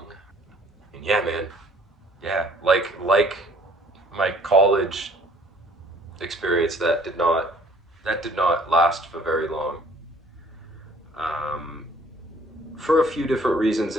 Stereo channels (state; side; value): normal; both; correlation 0.57